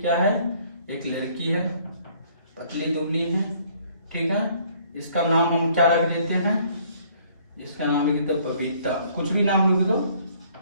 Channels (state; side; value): inverted; both; correlation -0.60